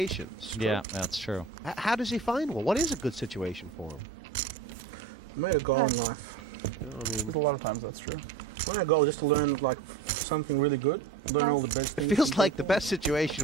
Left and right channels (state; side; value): quieter; left; 5.2 dB